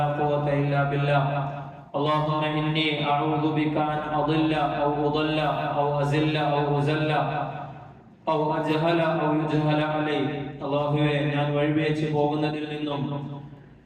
ഖുവത ഇല്ലാ ബില്ലാഹ് اللهم إني أعوذ بك أن أضل أو أضل أو أزل أو أزل أو أجهل أو يجهل علي. അല്ലാഹുവേ, ഞാൻ വഴിപിഴച്ചു പോകുന്നതിൽ നിന്നും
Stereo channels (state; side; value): identical; both; correlation 1.00